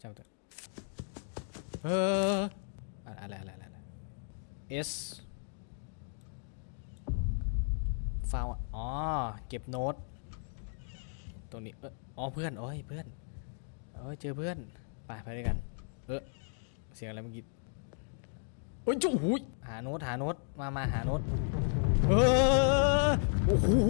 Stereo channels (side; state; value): right; silent; 55 dB below the other